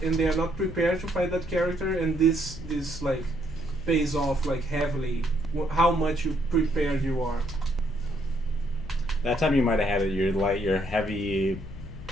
and they are not prepared to fight that character, and this like pays off like heavily how much you prepared you are. That time you might have had it. Your heavy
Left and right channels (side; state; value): left; noise; hum, 13 dB below the sound